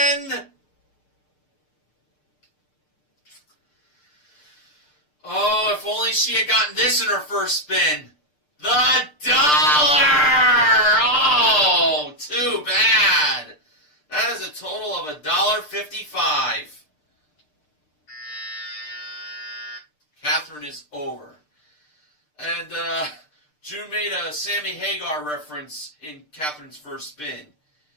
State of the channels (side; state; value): right; late; 6.7 ms